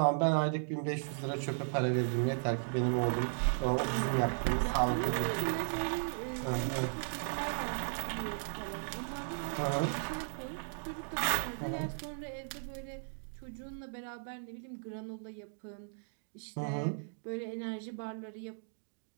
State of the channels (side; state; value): left; silent; digital silence